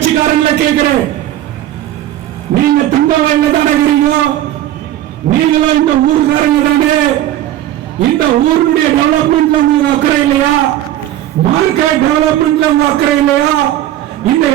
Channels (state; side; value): quieter; left; 13.1 dB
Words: கேட்கிறேன், நீங்க தங்க வயல்ல தானே இருக்கிறீங்க, நீங்களும் இந்த ஊருக்காரங்க தானே, இந்த ஊருடைய டெவலப்மெண்ட்ல உங்களுக்கு அக்கறை இல்லையா? மார்க்கெட் டெவலப்மெண்ட்ல உங்களுக்கு அக்கறை இல்லையா? இந்த